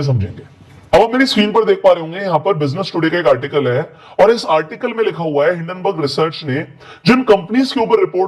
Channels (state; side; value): identical; both; correlation 1.00